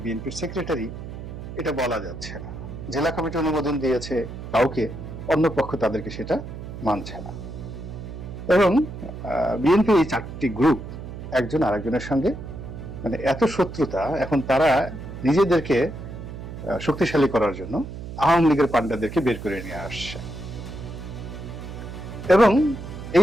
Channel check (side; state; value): right; noise; hum, 10 dB below the sound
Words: বিএনপির সেক্রেটারি, এটা বলা যাচ্ছে না। জেলা কমিটি অনুমোদন দিয়েছে কাউকে, অন্য পক্ষ তাদেরকে সেটা মানছে না। এবং বিএনপি এই 4টি গ্রুপ একজন আরেকজনের সঙ্গে মানে এত শত্রুতা, এখন তারা নিজেদেরকে শক্তিশালী করার জন্য আওয়ামী লীগের পান্ডাদেরকে বের করে নিয়ে আসছে। এবং